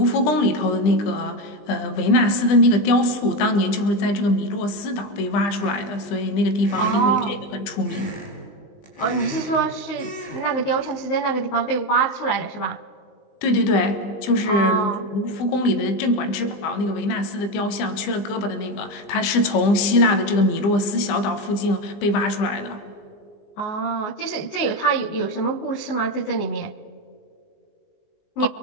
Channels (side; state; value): right; late; 20 ms